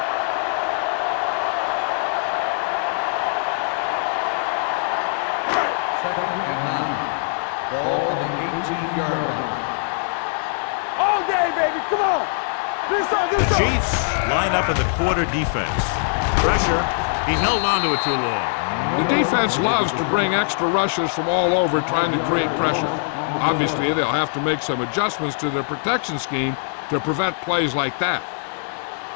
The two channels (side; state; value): right; silent; digital silence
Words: Second and 9. Ball on the 18-yard line. All day, baby. Come on. The Chiefs line up as a quarter defense. Pressure. He held on to it too long. The defense loves to bring extra rushers from all over trying to create pressure. Obviously, they'll have to make some adjustments to their protection scheme to prevent plays like that.